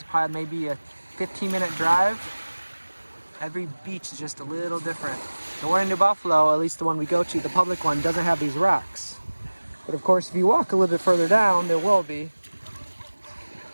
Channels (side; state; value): both; inverted; correlation -1.00